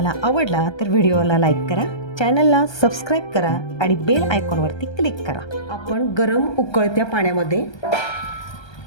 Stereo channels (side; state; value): right; late; 1.3 ms